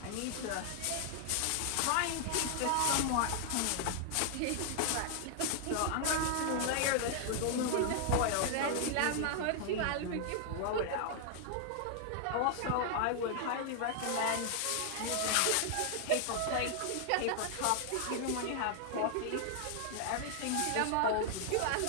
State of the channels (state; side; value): different; both; correlation 0.00